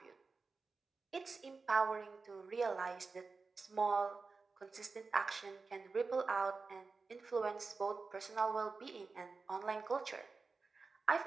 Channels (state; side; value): quieter; left; 4.3 dB